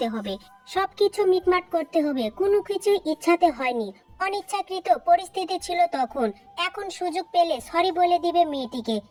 হবে, সবকিছু মিটমাট করতে হবে। কোনো কিছু ইচ্ছাতে হয়নি, অনিচ্ছাকৃত পরিস্থিতি ছিল তখন। এখন সুযোগ পেলে সরি বলে দিবে মেয়েটিকে।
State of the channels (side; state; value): both; identical; correlation 1.00